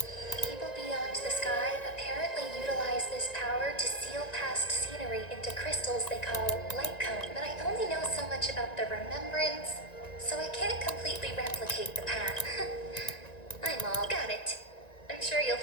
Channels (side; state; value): right; late; 1.9 ms